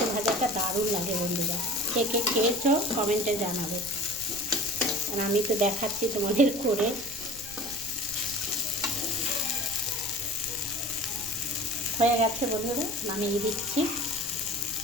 ভাজাটা দারুণ লাগে বন্ধুরা, কে কে খেয়েছো কমেন্টে জানাবে, আর আমি তো দেখাচ্ছি তোমাদের করে। হয়ে গেছে বন্ধুরা, নামিয়ে দিচ্ছি।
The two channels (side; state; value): right; noise; rumble, 17 dB below the sound